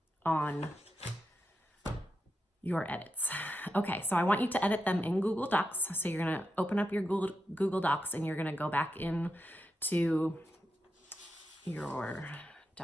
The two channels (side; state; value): both; normal; correlation 0.87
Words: your edits. Okay, so I want you to edit them in Google Docs. So you're gonna open up your Google Docs and you're gonna go back into your